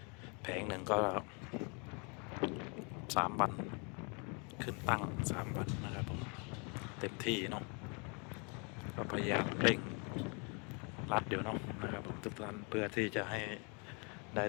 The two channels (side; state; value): right; quieter; 34.0 dB